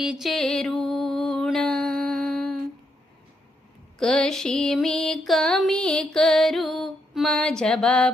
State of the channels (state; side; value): normal; both; correlation 0.78